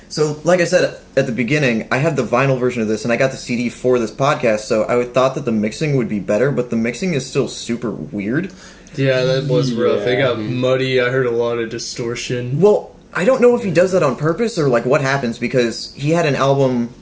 So, like I said at the beginning, I had the vinyl version of this, and I got the CD for this podcast, so I thought that the mixing would be better, but the mixing is still super weird. Yeah, that was rough. It got muddy. I heard a lot of distortion. Well, I don't know if he does that on purpose or what happens, because he had a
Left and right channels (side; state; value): both; identical; correlation 1.00